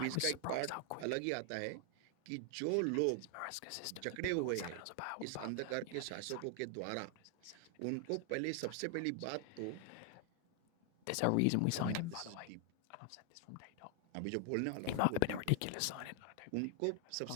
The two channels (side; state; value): both; different; correlation 0.00